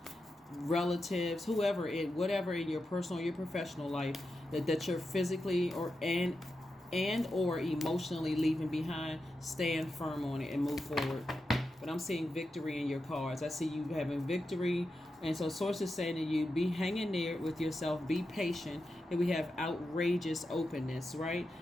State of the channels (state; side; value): normal; both; correlation 0.89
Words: relatives, whatever in your personal, your professional life, that you're physically or emotionally leaving behind. Stand firm on it and move forward. But I'm seeing victory in your cards. I see you having victory. And so source is saying to you, be hanging there with yourself, be patient. And we have outrageous openness, right?